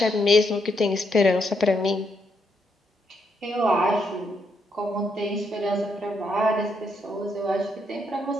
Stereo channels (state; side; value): normal; both; correlation 0.77